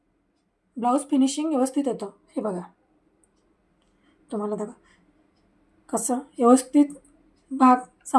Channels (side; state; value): both; identical; correlation 1.00